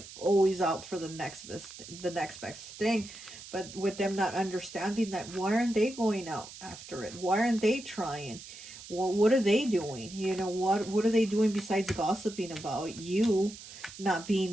always out for the next best thing. But with them not understanding that, why aren't they going out after it? Why aren't they trying? Well, what are they doing? What are they doing besides gossiping about you, not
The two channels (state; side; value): noise; right; hiss, 15 dB below the sound